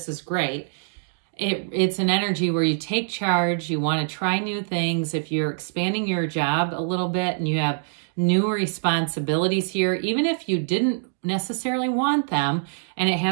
is great. It's an energy where you take charge, you want to try new things. If you're expanding your job a little bit and you have new responsibilities here, even if you didn't necessarily want them, and it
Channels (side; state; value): left; silent; digital silence